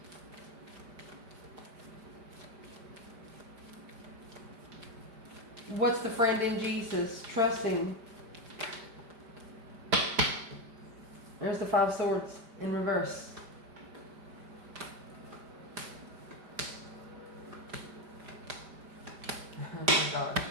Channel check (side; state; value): left; late; 5.1 ms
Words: What's the friend in Jesus? Trusting. There's the Five Swords in reverse. Oh my gosh.